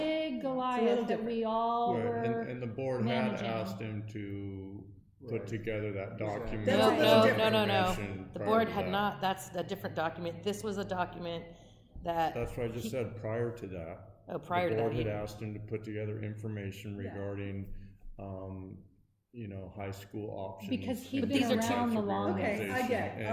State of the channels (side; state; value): both; identical; correlation 1.00